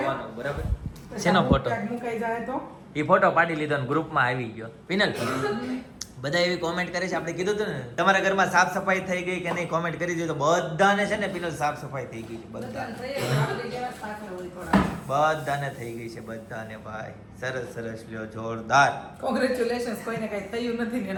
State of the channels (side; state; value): both; identical; correlation 1.00